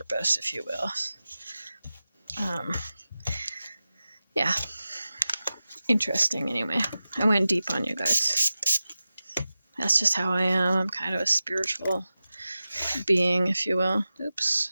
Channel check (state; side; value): inverted; both; correlation -0.94